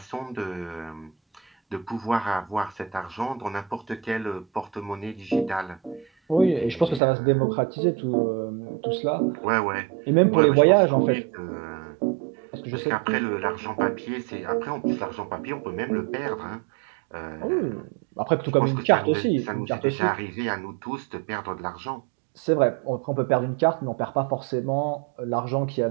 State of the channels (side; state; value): left; drops out; at 7.0 s